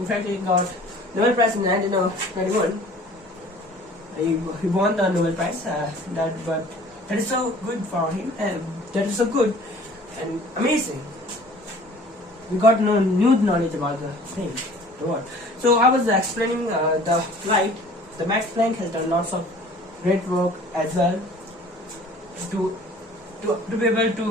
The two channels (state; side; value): normal; both; correlation 0.49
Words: effect, he got Nobel Prize in 1921. He won the Nobel Prize. But that is so good for him, and that is so good and amazing. We got new knowledge about the thing, the world. So I was explaining the light. The Max Planck has done lots of great work as well to be able